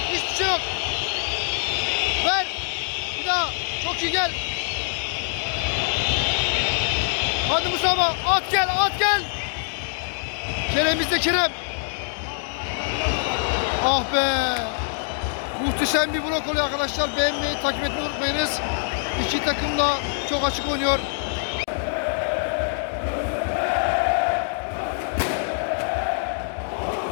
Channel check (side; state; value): right; silent; digital silence